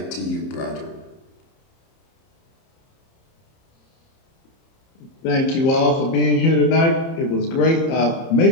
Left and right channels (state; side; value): late; right; 30 ms